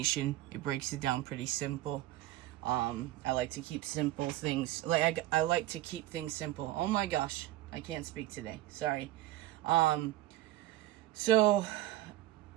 It breaks it down pretty simple. I like to keep simple things. I like to keep things simple. Oh my gosh, I can't speak today. Sorry. So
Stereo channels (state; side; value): quieter; left; 15.2 dB